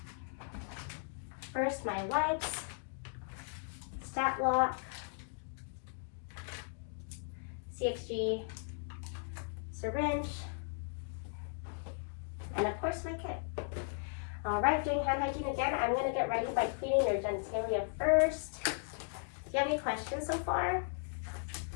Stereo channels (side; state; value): right; silent; digital silence